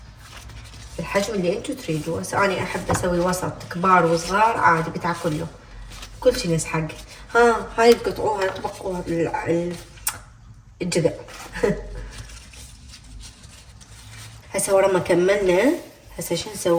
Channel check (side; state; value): both; identical; correlation 1.00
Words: الحجم اللي انتو تريدوه. هسه انا احب اسوي وسط، كبار وصغار عادي بتاكله كل شي يسحق. هاي تقطعوها تبقوها الجذع. هسه ورا ما كملنا هسه شو